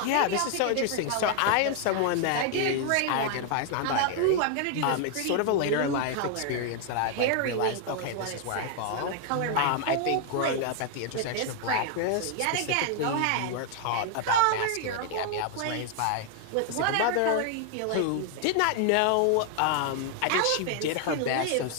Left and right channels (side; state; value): both; different; correlation 0.00